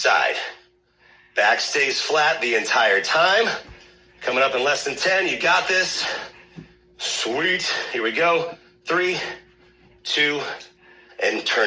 Back stays flat the entire time. Coming up in less than 10, you got this. Sweet. Here we go. 3, 2, and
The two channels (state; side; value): identical; both; correlation 1.00